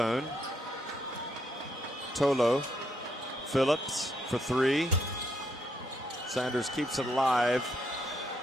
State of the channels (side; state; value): both; normal; correlation 0.75